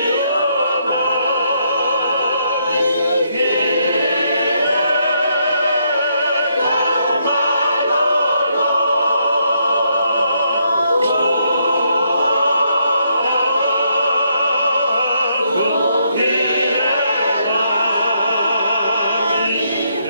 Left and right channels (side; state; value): both; inverted; correlation -0.74